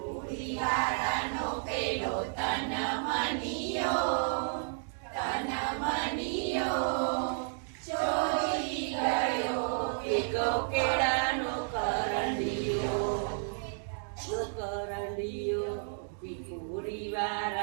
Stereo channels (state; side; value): silent; left; digital silence